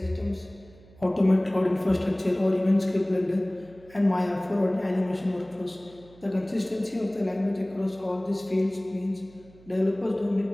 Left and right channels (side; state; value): right; noise; hum, 24 dB below the sound